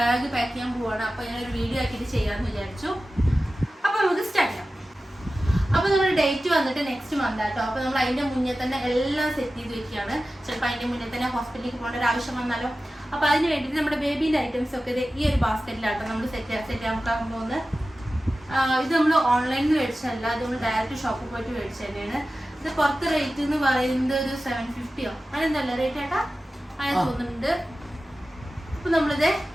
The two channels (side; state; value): both; normal; correlation 0.95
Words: പാക്ക് ചെയ്യാൻ പോവാണ്. അപ്പോൾ ഞാനൊരു വീഡിയോ ആക്കിയിട്ട് ചെയ്യാമെന്ന് വിചാരിച്ചു. അപ്പോൾ നമുക്ക് സ്റ്റാർട്ട് ചെയ്യാം. അപ്പോൾ നമ്മുടെ ഡേറ്റ് വന്നിട്ട് നെക്സ്റ്റ് മന്ത് ആട്ടോ. അപ്പോൾ നമ്മൾ അതിൻ്റെ മുന്നേ തന്നെ എല്ലാം സെറ്റ് ചെയ്ത് വെക്കുകയാണ്. ചിലപ്പോൾ അതിൻ്റെ മുന്നേ തന്നെ ഹോസ്പിറ്റലിലേക്ക് പോകേണ്ട ഒരു ആവശ്യം വന്നാലോ. അപ്പോൾ അതിന് വേണ്ടിയിട്ട് നമ്മുടെ ബേബീൻ്റെ ഐറ്റംസ് ഒക്കെ ഈ ഒരു ബാസ്ക്കറ്റിലാട്ടോ നമ്മൾ സെറ്റ് ചെയ്യാൻ പോകുന്നത്. ഇത് നമ്മൾ ഓൺലൈനിൽ മേടിച്ചല്ല, ഇത് നമ്മൾ ഡയറക്റ്റ് ഷോപ്പിൽ പോയിട്ട് മേടിച്ചു തന്നെയാണ്. ഇത് പുറത്ത് റേറ്റ് എന്ന് പറയുന്നത് ഒരു 750 അങ്ങനെന്തല്ല റേറ്റ് ആട്ടാ അങ്ങനെ തോന്നുന്നുണ്ട്. അപ്പൊ നമ്മളിത്